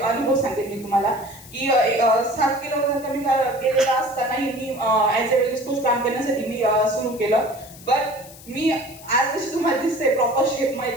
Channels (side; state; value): left; noise; hiss, 19 dB below the sound